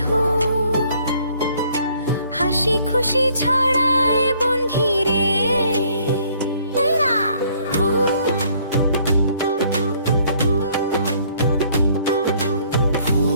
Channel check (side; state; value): both; inverted; correlation -0.62